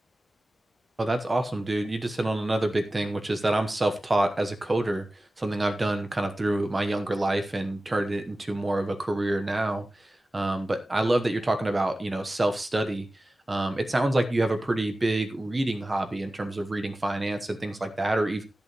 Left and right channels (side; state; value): both; normal; correlation 0.96